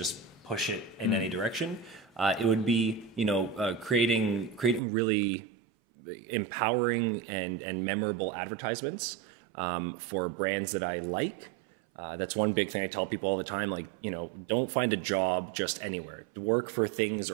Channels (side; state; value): left; drops out; at 4.8 s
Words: push it in any direction? It would be, creating really empowering and memorable advertisements for brands that I like. That's one big thing I tell people all the time. Like, don't find a job just anywhere. Work for things